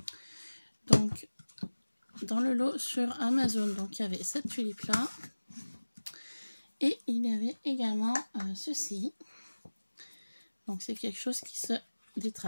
Donc, dans le lot sur Amazon, donc il y avait cette tulipe-là. Et il y avait également ceci. Donc, c'est quelque chose qui se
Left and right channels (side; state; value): both; inverted; correlation -1.00